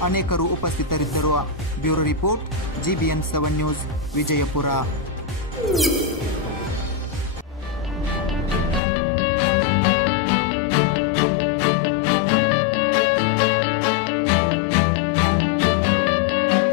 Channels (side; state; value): right; drops out; at 8.8 s